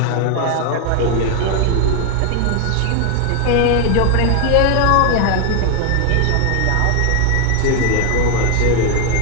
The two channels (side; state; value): both; different; correlation 0.00